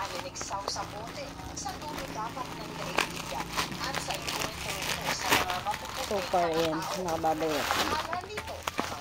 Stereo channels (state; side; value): identical; both; correlation 1.00